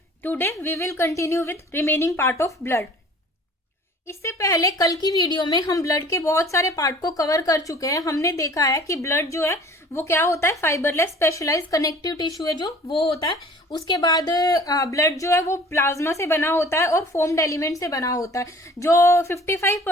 Today we will continue with remaining part of blood. इससे पहले कल की video में हम ब्लड के बहुत सारे पार्ट को कवर कर चुके हैं। हमने देखा है कि ब्लड जो है वो क्या होता है, फाइबरलेस स्पेशलाइज कनेक्टिव टिश्यू है जो वो होता है। उसके बाद ब्लड जो है वो प्लाज्मा से बना होता है और फोम्ड एलिमेंट से बना होता है। जो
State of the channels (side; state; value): both; normal; correlation 0.48